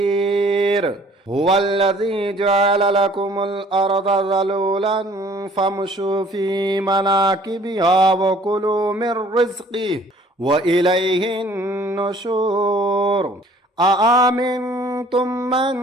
هو الذي جعل لكم الأرض ذلولا فامشوا في مناكبها وكلوا من رزقه وإليه النشور أأمنتم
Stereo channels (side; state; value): both; normal; correlation 0.55